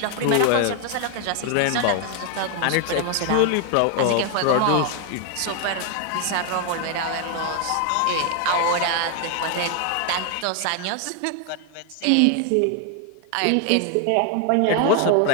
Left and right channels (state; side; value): different; both; correlation 0.01